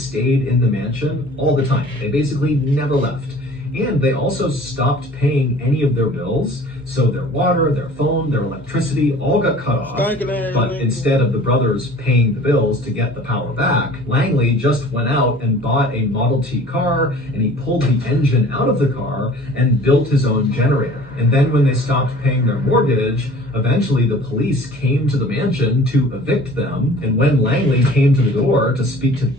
in the mansion all the time. They basically never left. And they also stopped paying any of their bills, so their water, their phone, their electricity all got cut off. But instead of the brothers paying the bills to get the power back, Langley just went out and bought a Model T car, and he pulled the engine out of the car and built his own generator. And then when they stopped paying their mortgage, eventually the police came to the mansion to evict them. And when Langley came to the door to speak to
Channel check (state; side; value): normal; both; correlation 0.46